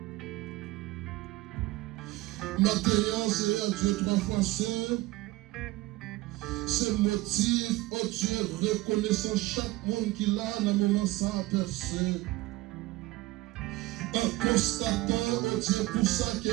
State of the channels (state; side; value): quieter; left; 18.9 dB